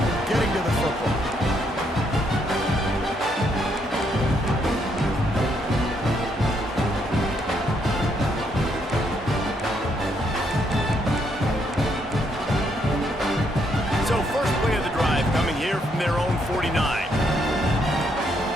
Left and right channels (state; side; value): normal; both; correlation 0.74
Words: getting to the football. So first play of the drive coming here from their own 49.